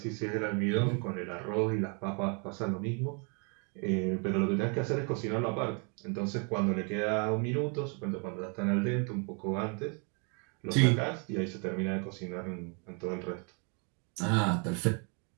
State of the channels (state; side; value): quieter; left; 36.6 dB